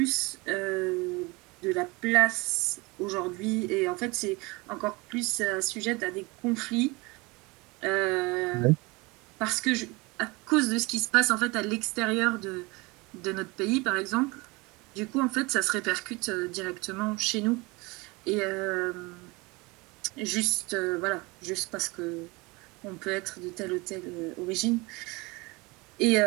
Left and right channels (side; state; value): left; quieter; 25.1 dB